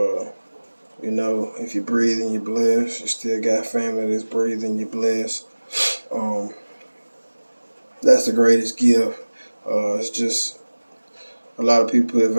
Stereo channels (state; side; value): inverted; both; correlation -1.00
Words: If you're breathing, you're blessed. You still got family that's breathing, you're blessed. Um, that's the greatest gift. It's just a lot of people put